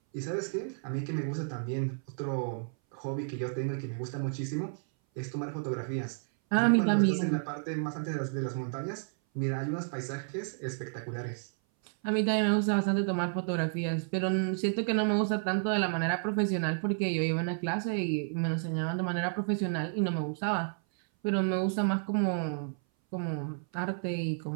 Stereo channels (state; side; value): silent; left; 57 dB below the other